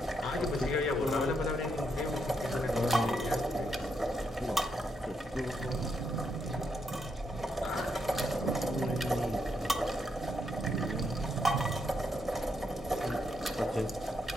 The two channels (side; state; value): both; normal; correlation 0.79